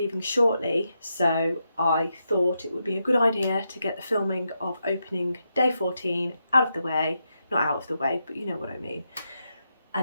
shortly, so I thought it would be a good idea to get the filming of opening day 14 out of the way. Not out of the way, but you know what I mean.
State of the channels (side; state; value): both; inverted; correlation -0.84